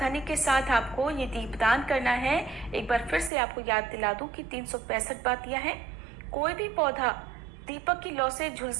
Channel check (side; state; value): left; drops out; at 3.3 s